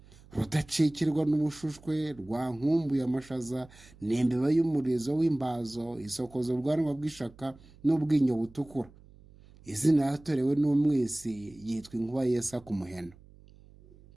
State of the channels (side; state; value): right; noise; hum, 24 dB below the sound